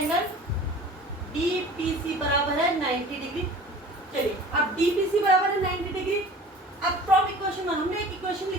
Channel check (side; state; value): both; normal; correlation 0.43